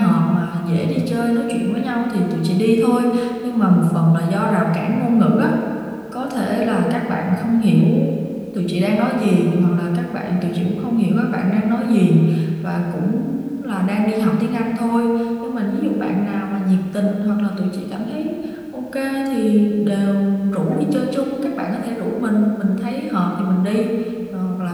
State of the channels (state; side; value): identical; both; correlation 1.00